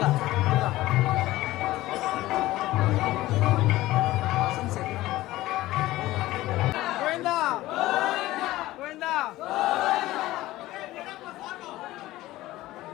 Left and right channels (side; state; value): right; quieter; 16.9 dB